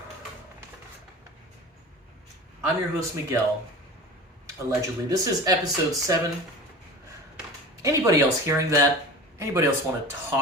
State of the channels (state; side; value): normal; both; correlation 0.35